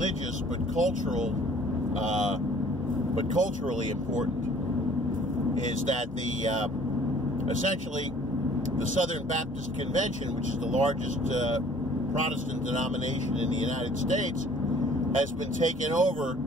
but culturally important, is that the essentially the Southern Baptist Convention, which is the largest Protestant denomination in the United States, has been taken over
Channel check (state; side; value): normal; both; correlation 0.54